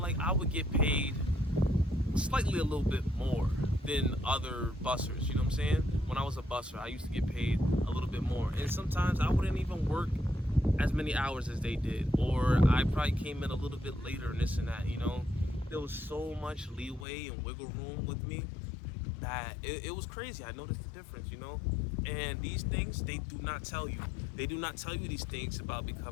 like I would get paid slightly a little bit more than other bussers. You know what I'm saying? When I was a busser, I used to get paid a little bit more, and sometimes I wouldn't even work as many hours as they did, or I probably came in a little bit later and this and that. You know, there was so much leeway and wiggle room with me that it was crazy. I noticed the difference, you know. And these things, they do not tell you. They do not tell you these things about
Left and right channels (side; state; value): right; drops out; at 17.1 s